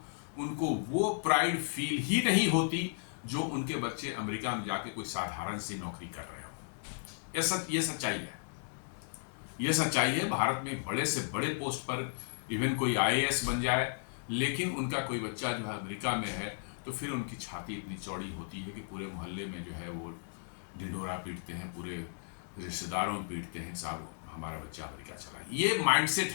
उनको वो प्राइड फील ही नहीं होती जो उनके बच्चे अमेरिका में जाके कोई साधारण सी नौकरी कर रहे हो। ये सच्चाई है। ये सच्चाई है। भारत में बड़े से बड़े पोस्ट पर इवन कोई IAS बन जाए, लेकिन उनका कोई बच्चा जो है अमेरिका में है, तो फिर उनकी छाती इतनी चौड़ी होती है कि पूरे मोहल्ले में जो है वो ढिंढोरा पीटते हैं, पूरे रिश्तेदारों में पीटते हैं, साहब हमारा बच्चा अमेरिका चला। ये माइंडसेट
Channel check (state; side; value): silent; right; 55 dB below the other